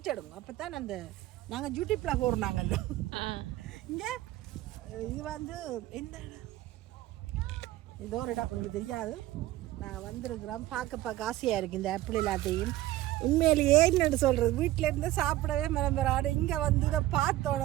அப்போ தான் அந்த நாங்கள் யூடியூப்பில் போடுறாங்கல்ல. இங்கே இது வந்து எந்த இடம், ஏதோ ஒரு இடம் உங்களுக்கு தெரியாது. நான் வந்திருக்கிறோம், பார்க்க ஆசையாக இருக்குது இந்த ஆப்பிள் எல்லாத்தையும். உண்மையிலேயே என்னென்னு சொல்கிறது, வீட்டில் இருந்து சாப்பிடவே மரம்பராடு. இங்கே வந்து இதை பார்த்த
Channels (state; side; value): quieter; left; 15.9 dB